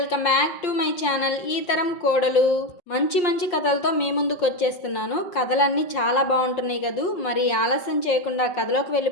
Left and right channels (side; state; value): right; late; 5.6 ms